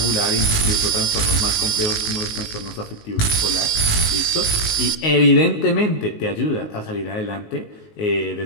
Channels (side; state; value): right; late; 19 ms